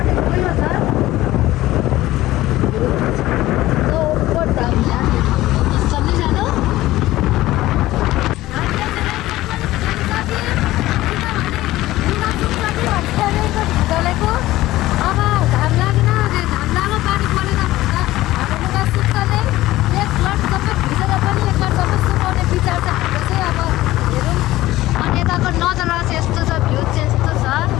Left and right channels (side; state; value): right; quieter; 16.5 dB